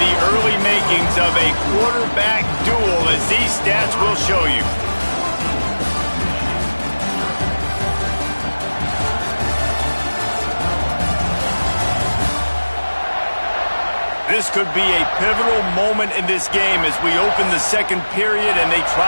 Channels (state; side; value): inverted; both; correlation -1.00